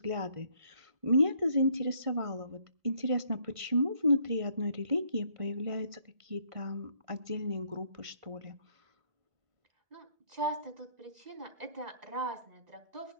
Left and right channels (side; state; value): left; late; 1.5 ms